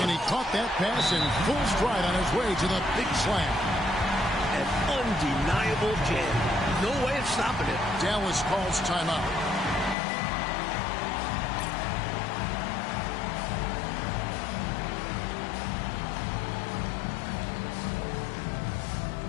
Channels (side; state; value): right; drops out; at 10.0 s